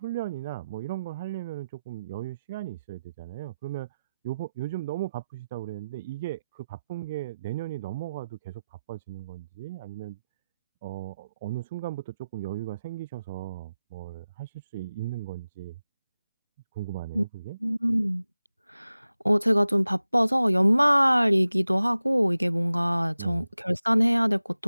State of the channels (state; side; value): inverted; both; correlation -0.94